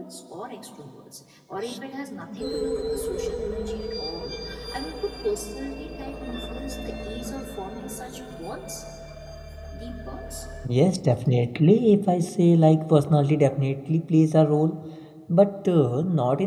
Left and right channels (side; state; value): both; identical; correlation 1.00